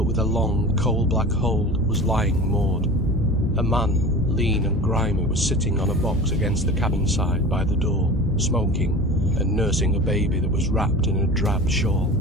with a long, coal-black hold, was lying moored. A man, lean and grimy, was sitting on a box against the cabin side by the door, smoking, and nursing a baby that was wrapped in a drab shawl,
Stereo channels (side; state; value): both; normal; correlation 0.35